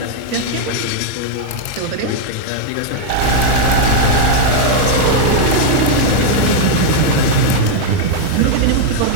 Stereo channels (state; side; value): different; both; correlation -0.01